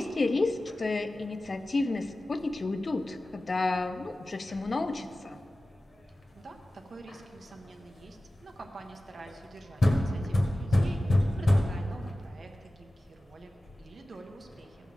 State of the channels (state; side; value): normal; both; correlation 0.96